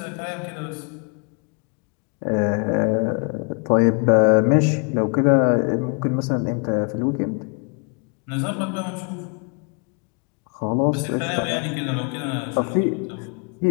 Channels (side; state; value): right; quieter; 36.8 dB